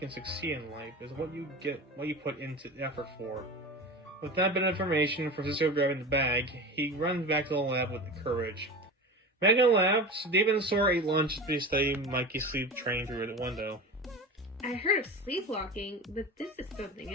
succeed in life is what you put into effort for. With that bit of information, Francisco grabbing the bag, he runs back to the lab with courage. Back in the lab, David and Sora ate lunch as they studied Mikey's sleep training through the window. I heard of sleepwalking, but this is something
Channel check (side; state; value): both; normal; correlation 0.30